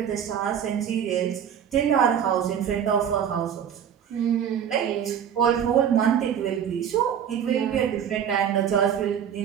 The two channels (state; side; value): quieter; left; 8.6 dB